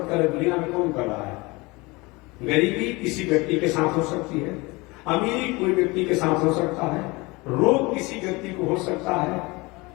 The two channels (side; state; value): right; quieter; 24.2 dB